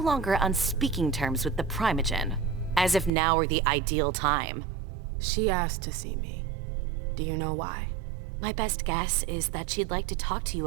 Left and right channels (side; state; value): left; drops out; at 3.1 s